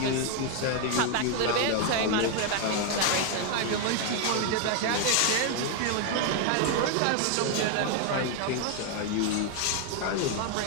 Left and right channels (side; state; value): both; different; correlation 0.00